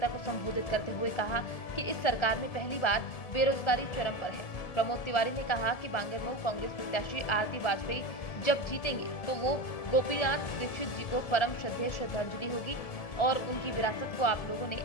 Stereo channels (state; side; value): late; right; 1.7 ms